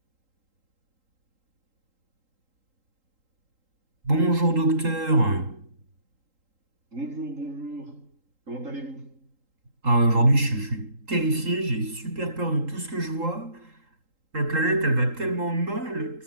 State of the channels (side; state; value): left; late; 3.8 ms